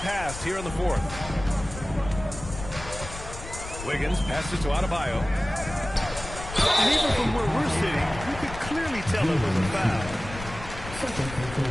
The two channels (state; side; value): noise; left; rumble, 11 dB below the sound